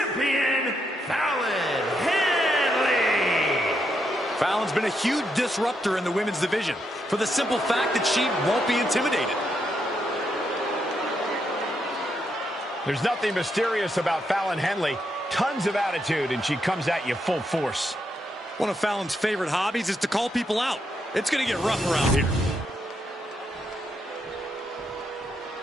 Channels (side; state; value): both; normal; correlation 0.80